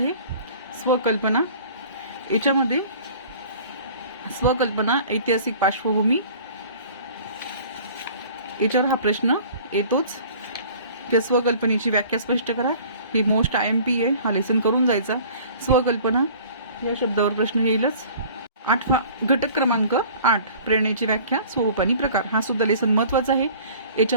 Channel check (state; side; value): inverted; both; correlation -0.47